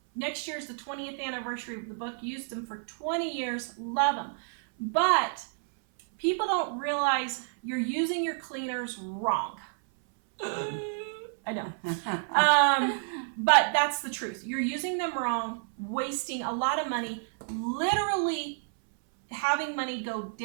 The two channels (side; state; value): left; silent; 58 dB below the other